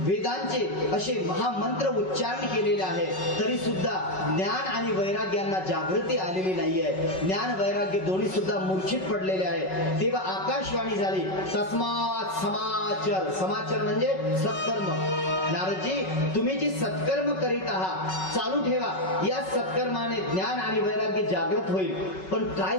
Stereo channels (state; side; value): late; right; 5.3 ms